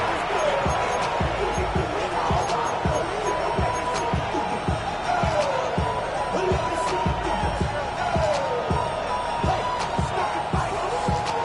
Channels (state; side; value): identical; both; correlation 1.00